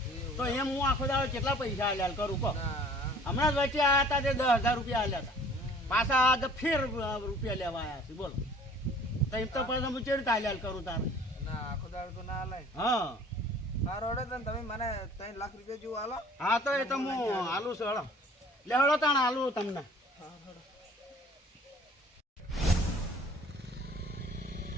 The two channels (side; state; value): both; normal; correlation 0.51